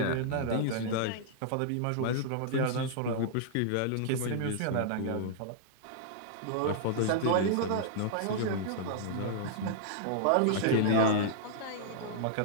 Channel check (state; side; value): different; both; correlation -0.02